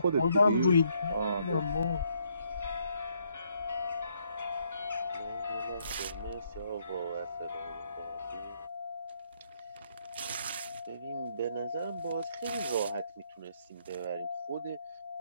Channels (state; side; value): inverted; both; correlation -0.71